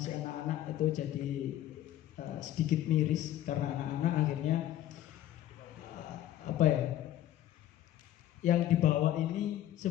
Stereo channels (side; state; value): right; quieter; 12.8 dB